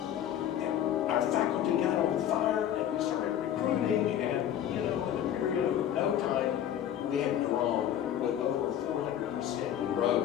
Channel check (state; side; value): quieter; right; 10.5 dB